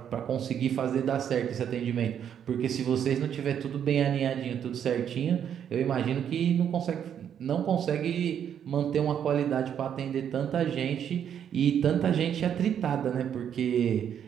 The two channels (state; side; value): quieter; left; 8.9 dB